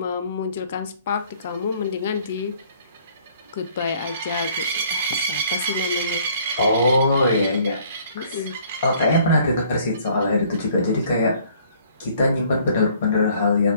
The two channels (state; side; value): inverted; both; correlation -0.59